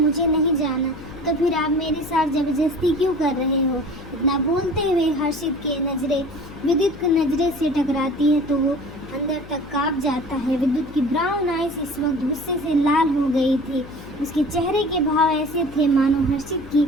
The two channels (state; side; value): noise; left; hum, 16 dB below the sound